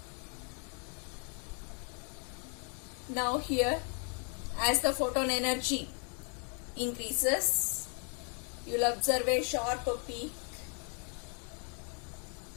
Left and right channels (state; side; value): quieter; right; 39.6 dB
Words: Now here, as the photon energy increases, you will observe a sharp peak,